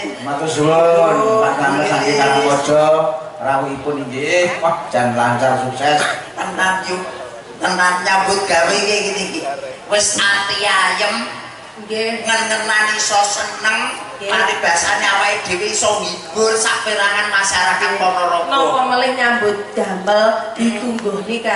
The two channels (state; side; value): identical; both; correlation 1.00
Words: Matur suwun Pak Tamu saking Karangwaja rawuhipun inggih. Wah jan lancar sukses. tenan nyambut gawe iki iki wis ati ayem nggih ngenenani iso seneng paribasane awake dhewe iso ngibur saperangan masyarakat Ponorogo napa melih nyambut damel ditungguhni